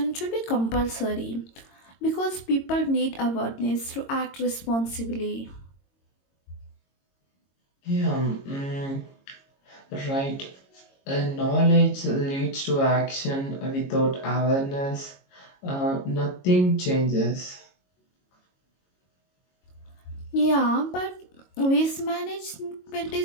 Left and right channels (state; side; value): late; right; 22 ms